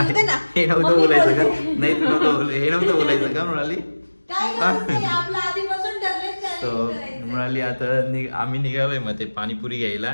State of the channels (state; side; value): inverted; both; correlation -1.00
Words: येते ना. हे नव्हतं बोलायचं का? नाही तू नव्हतं हे नव्हतं बोलायचं का मृणाली? काय नाही, आपलं आधीपासून ठरलंय सो challenge करायचं. मृणाली आता आम्ही निघालोय मग ते पाणीपुरी घ्यायला.